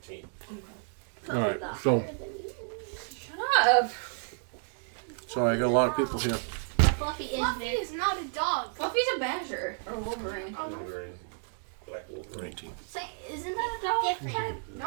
All right. So, Shut up. sorry, I got a lot of people here. Fluffy is Fluffy big. is not a dog. Fluffy's a badger. Or Wolverine. Wolverine. Black Wolverine. 19. Say, isn't that a dog? Different.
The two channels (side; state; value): left; silent; 57 dB below the other